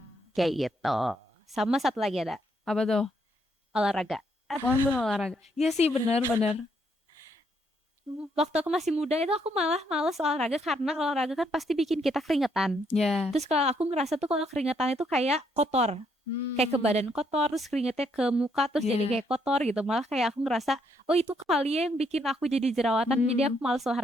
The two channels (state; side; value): normal; both; correlation 0.73